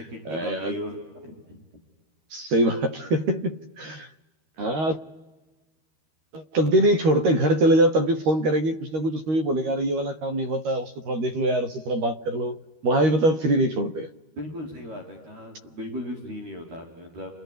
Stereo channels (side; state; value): left; late; 13 ms